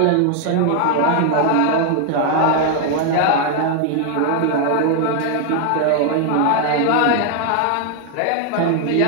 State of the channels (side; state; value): both; different; correlation 0.00